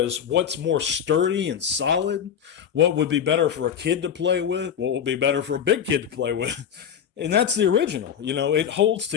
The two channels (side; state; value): right; quieter; 8.4 dB